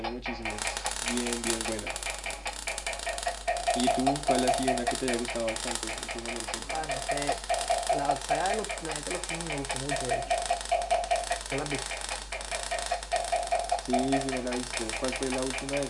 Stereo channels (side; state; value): both; identical; correlation 1.00